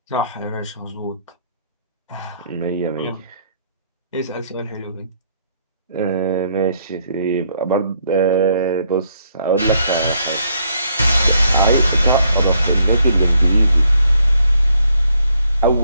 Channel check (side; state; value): both; inverted; correlation -0.71